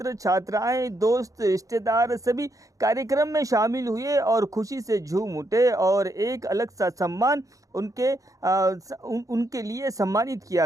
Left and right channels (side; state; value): left; late; 0.16 ms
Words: छात्राएं, दोस्त, रिश्तेदार सभी कार्यक्रम में शामिल हुए और खुशी से झूम उठे और एक अलग सा सम्मान उनके लिए सम्मानित किया